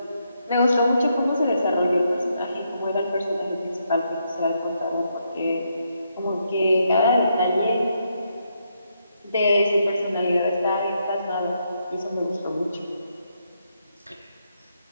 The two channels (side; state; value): both; inverted; correlation -0.78